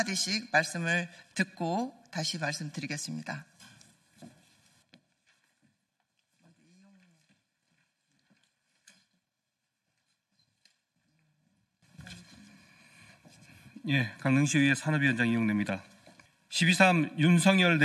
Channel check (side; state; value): both; identical; correlation 1.00